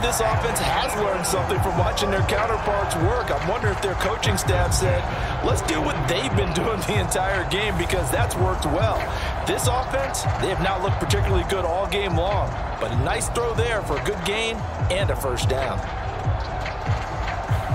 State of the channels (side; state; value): both; identical; correlation 1.00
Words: offense has learned something from watching their counterparts work. I'm wondering if their coaching staff said, let's do what they've been doing the entire game because that's worked well. This offense, they have not looked particularly good all game long, but a nice throw there for a good gain and a first down.